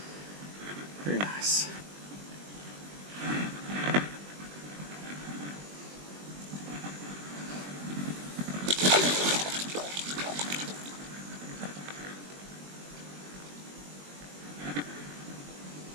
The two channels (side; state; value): left; late; 21 ms